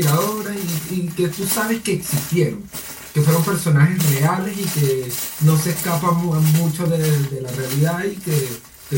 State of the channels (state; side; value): identical; both; correlation 1.00